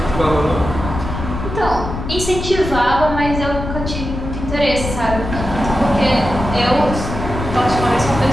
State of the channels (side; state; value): left; noise; rumble, 6 dB below the sound